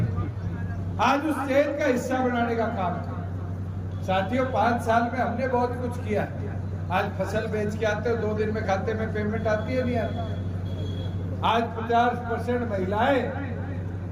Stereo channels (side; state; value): both; identical; correlation 1.00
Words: आज उस चेन का हिस्सा बनाने का काम है। साथियों 5 साल में हमने बहुत कुछ किया। आज फसल बेच के आते हो 2 दिन में खाते में पेमेंट आती है नहीं आती। आज 50% महिलाएं